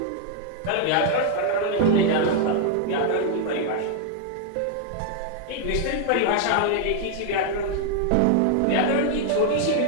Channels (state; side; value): different; both; correlation 0.00